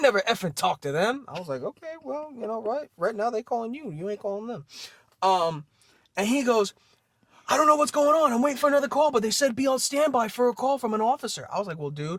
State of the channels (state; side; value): identical; both; correlation 1.00